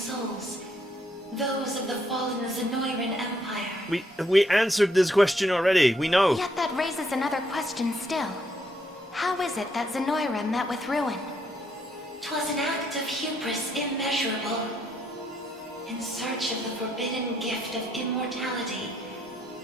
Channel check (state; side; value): normal; both; correlation 0.72